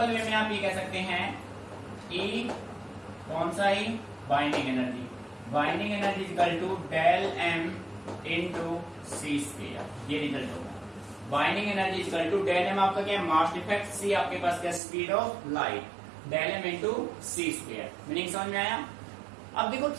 वे में आप ये कह सकते हैं E कौन सा ही, binding energy, binding energy equal to del M into C square, ये रिजल्ट होगा। Binding energy equal to del M आपका क्या है, मास डिफेक्ट, C आपके पास क्या, speed of light, del M into C square. Meaning समझ में आया। अब देखो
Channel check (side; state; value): left; drops out; at 14.8 s